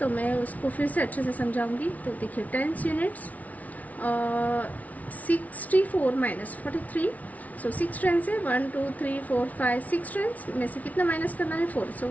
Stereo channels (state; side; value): late; right; 0.071 ms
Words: मैं उसको फिर से अच्छे से समझाऊंगी। तो देखिए टेंस यूनिट्स 64 माइनस 43, सो 6 टेंस है 1 2 3 4 5 6 टेंस में से कितना माइनस करना है 4, सो